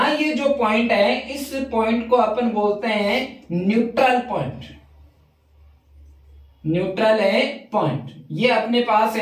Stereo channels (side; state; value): both; identical; correlation 1.00